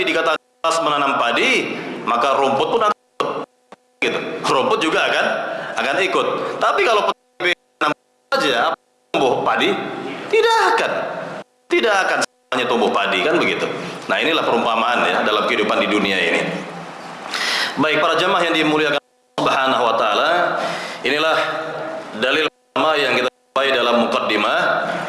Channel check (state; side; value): identical; both; correlation 1.00